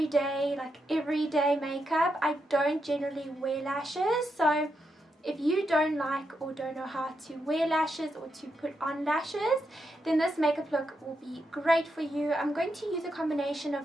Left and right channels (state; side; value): normal; both; correlation 0.83